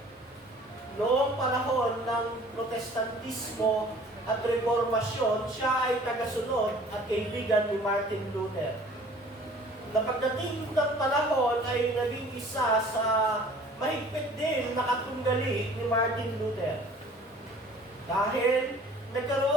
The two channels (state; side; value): normal; both; correlation 0.50